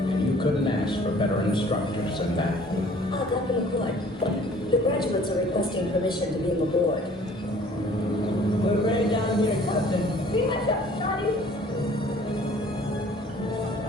And you couldn't ask for better instructors than that. Dr. McCoy, the graduates are requesting permission to beam aboard. We're ready down here, Captain. Be much up, Scotty.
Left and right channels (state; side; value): normal; both; correlation 0.53